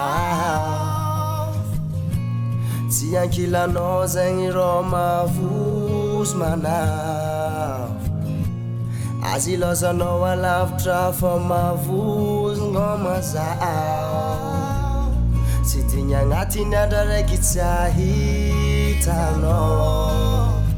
Siyankila no zengi roma fuzmana Aziloza no wa love trafa mavuz ngoma zao Sitinya ngati nadare kitahita no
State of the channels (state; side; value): identical; both; correlation 1.00